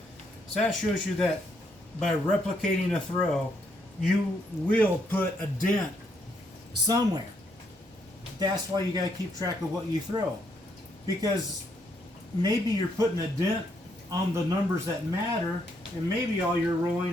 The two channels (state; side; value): normal; both; correlation 0.74